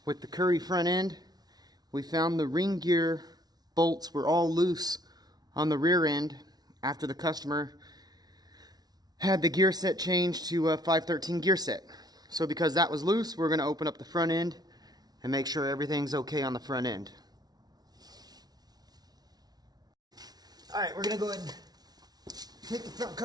with the Curry front end. We found the ring gear bolts were all loose on the rear end after the customer had the gear set changed to a 513 gear set. So because that was loose, we're going to open up the front end and make sure everything's okay on the front end. Alright, we're going to go ahead and take the front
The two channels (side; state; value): left; late; 0.19 ms